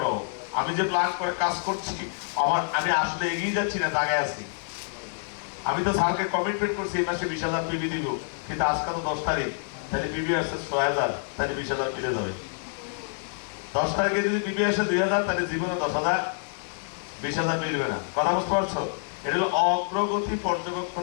আমি যে প্ল্যান করে কাজ করছি, আমি আসলে এগিয়ে যাচ্ছি না, দাগায় আছি। আমি তো স্যারকে কমিটমেন্ট করছি এই মাসে 20,000 পিবি দিব, কিন্তু আজকে তো 10 তারিখ, তাহলে পিবি আসছে 6,000, তাহলে 20,000 মিলে যাবে। 10 তারিখে যদি পিবি আসে 2,000, তাহলে জীবনে 10,000 20,000 মিলবে না। কথা বুঝতে পারছো? এটা হলো অগ্রগতি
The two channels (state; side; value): silent; right; digital silence